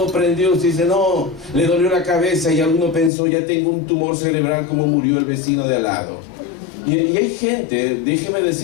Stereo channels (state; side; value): drops out; right; at 3.1 s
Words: prendió, usted dice, no, le dolió la cabeza y alguno pensó, ya tengo un tumor cerebral como murió el vecino de al lado. Y hay gente, déjeme